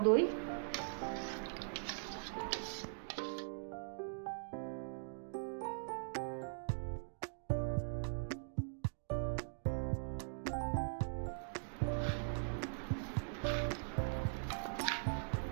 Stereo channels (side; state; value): left; silent; digital silence